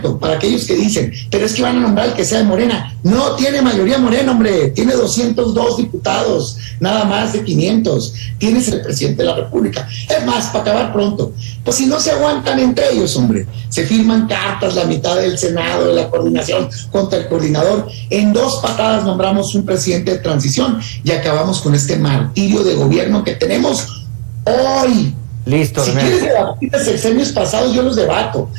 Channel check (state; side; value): silent; left; digital silence